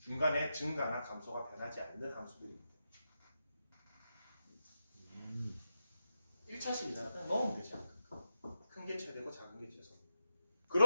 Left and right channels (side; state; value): both; inverted; correlation -0.87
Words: 중간에 증가나 감소가 변하지 않는 함수들입니다. 1차식이잖아. 그냥 넣으면 되지 양 끝값. 큰 게 최대고 작은 게 최소.